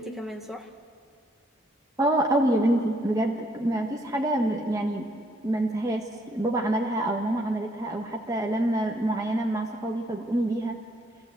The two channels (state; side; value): normal; both; correlation 0.69